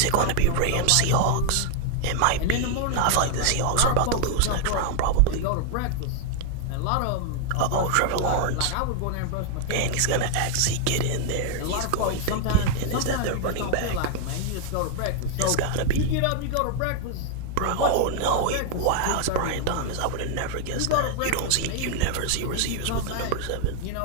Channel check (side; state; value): both; different; correlation 0.00